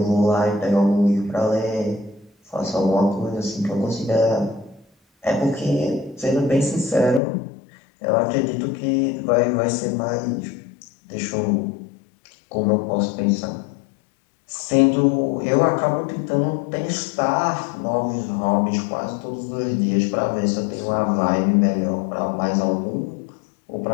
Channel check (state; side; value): drops out; right; at 7.2 s